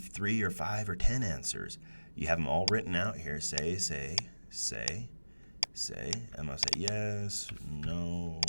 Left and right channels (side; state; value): both; inverted; correlation -1.00